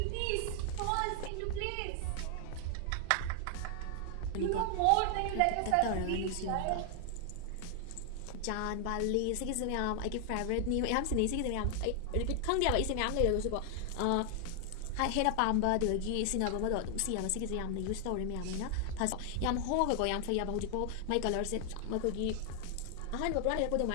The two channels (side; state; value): both; different; correlation 0.00